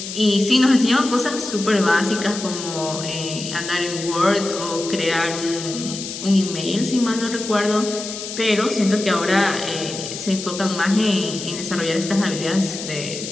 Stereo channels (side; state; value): left; noise; hiss, 8 dB below the sound